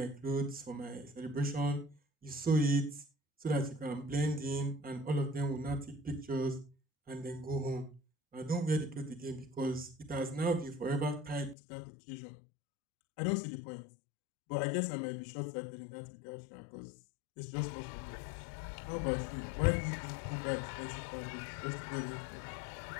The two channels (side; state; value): right; drops out; at 11.6 s